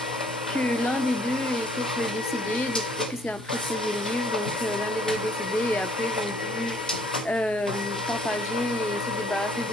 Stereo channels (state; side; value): normal; both; correlation 0.62